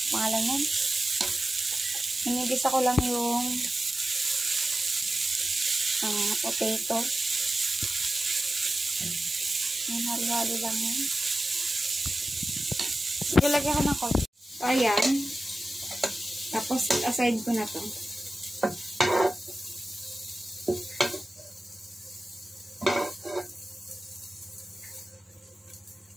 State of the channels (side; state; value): both; normal; correlation 0.95